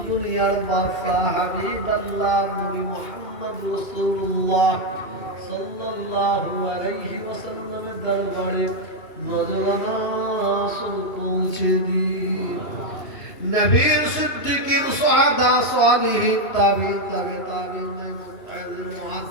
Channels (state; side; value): late; right; 2.7 ms